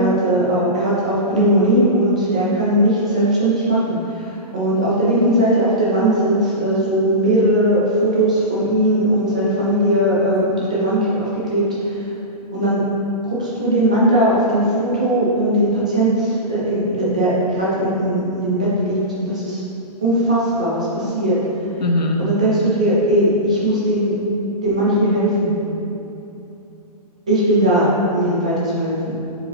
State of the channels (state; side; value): normal; both; correlation -0.19